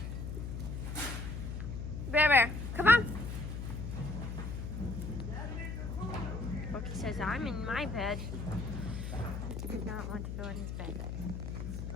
Bear, bear, come on. Bookie says I'm in my bed. He did not want to go in his bed.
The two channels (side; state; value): left; noise; hum, 4 dB below the sound